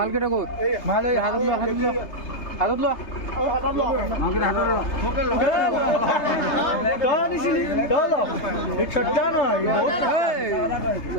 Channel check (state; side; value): late; right; 3.3 ms